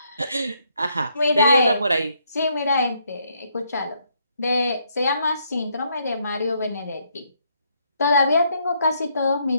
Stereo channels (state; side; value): inverted; both; correlation -0.73